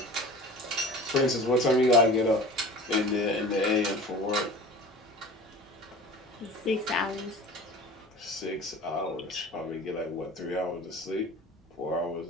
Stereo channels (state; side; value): normal; both; correlation 0.39